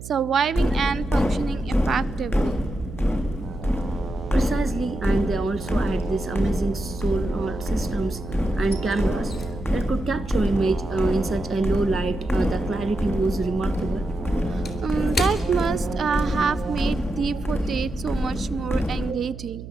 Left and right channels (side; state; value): right; noise; hum, 12 dB below the sound